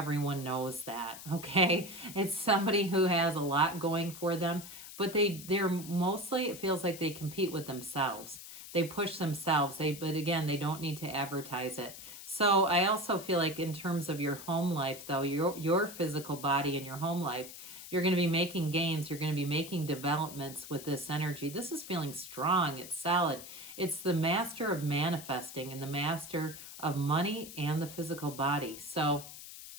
knows that, okay? It's somebody who has a lot going for them, but they're mostly, it feels like they compete with themselves. They push themselves, but again, they don't need to advertise it. So I also feel like in terms of your home life, though, your physical body and your home life, you're going to be making gains. You're going to be making developments with this energy. This is feeling strong. It's solid. It's the master of manifesting and the master of money and the physical body. So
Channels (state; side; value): noise; left; hiss, 13 dB below the sound